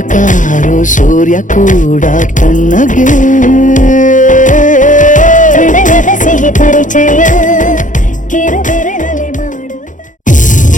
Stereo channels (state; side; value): late; right; 0.37 ms